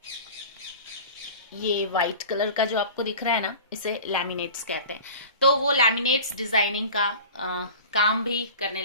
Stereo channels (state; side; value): inverted; both; correlation -0.38